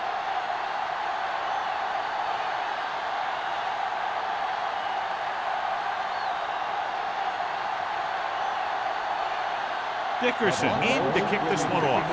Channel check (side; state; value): both; identical; correlation 1.00